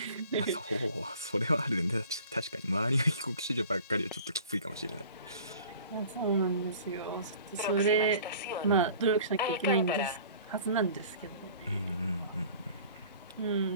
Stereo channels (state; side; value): inverted; both; correlation -0.47